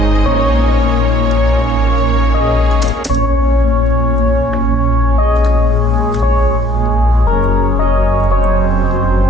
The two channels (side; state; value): both; normal; correlation 0.60